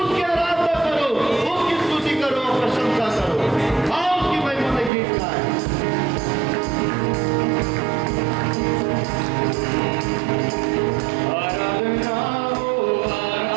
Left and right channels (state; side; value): drops out; left; at 4.9 s